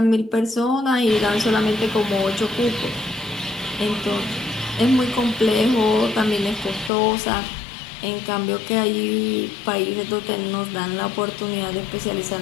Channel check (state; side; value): drops out; right; at 6.9 s